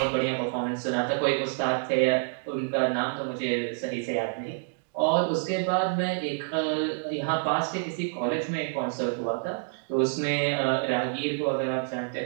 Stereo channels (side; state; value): left; silent; digital silence